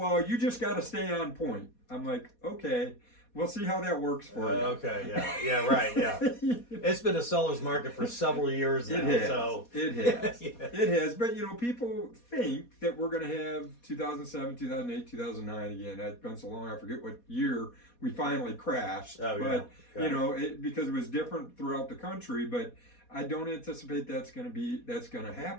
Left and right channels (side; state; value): right; late; 4.2 ms